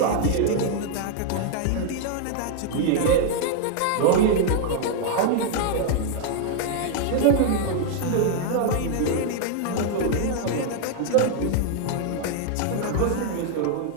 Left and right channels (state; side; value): different; both; correlation 0.00